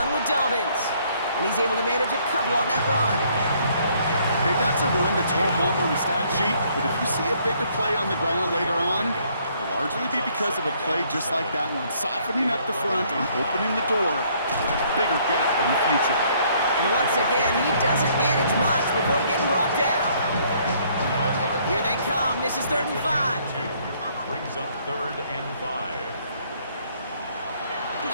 run with Dobbins. And he's able to manage a couple on that run. Hey, that's a run that's ho-hum on the stat sheet, but if you see a bigger play on the ground later on, it'll largely be because of a play just like that one, softening up the front and opening the door, bigger gap in the future. And once again, he doesn't manage much before getting brought down. Here they come. This is 3rd and 5. Brings up 3rd and 5.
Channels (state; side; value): inverted; both; correlation -0.65